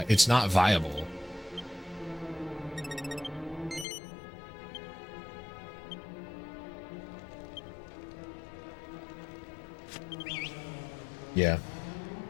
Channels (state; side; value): drops out; right; at 3.9 s